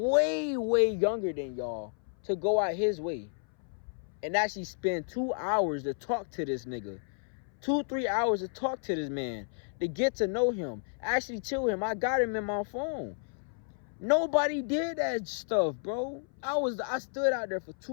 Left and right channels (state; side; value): silent; right; 57 dB below the other